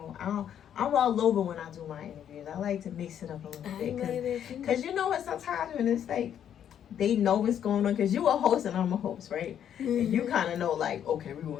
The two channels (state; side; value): quieter; right; 9.5 dB